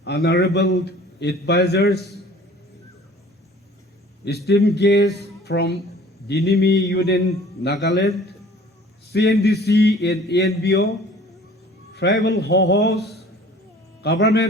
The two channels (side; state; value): both; normal; correlation 0.49